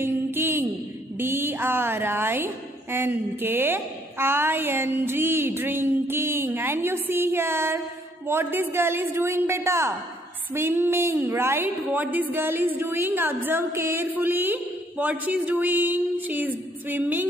D-R-I-N-K-I-N-G. Drinking. And you see here what this girl is doing beta? Swimming, right? What this girl is doing? Observe carefully. What she is doing? She is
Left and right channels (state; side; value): normal; both; correlation 0.66